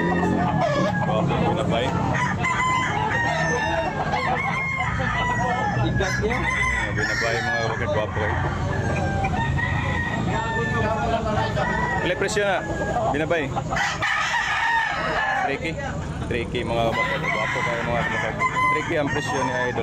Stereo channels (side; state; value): both; identical; correlation 1.00